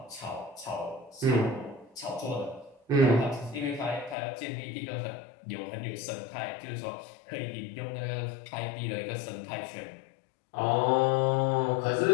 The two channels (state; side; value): drops out; right; at 4.2 s